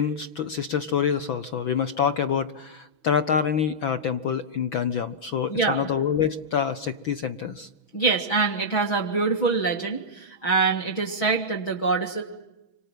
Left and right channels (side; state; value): right; late; 6.2 ms